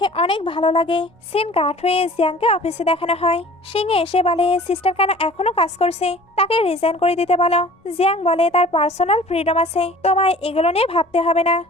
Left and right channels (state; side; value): normal; both; correlation 0.46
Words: অনেক ভালো লাগে। সিন কাট হয়ে জিয়াংকে অফিসে দেখানো হয়। সিংহে এসে বলে সিস্টার কেন এখনো কাজ করছে, তাকে রিজাইন করে দিতে বলো। জিয়াং বলে তার পার্সোনাল ফ্রিডম আছে, তোমায় এগুলো নিয়ে ভাবতে হবে না।